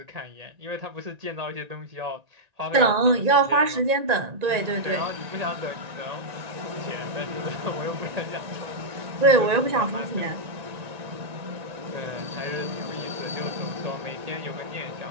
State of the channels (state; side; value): late; left; 1.9 ms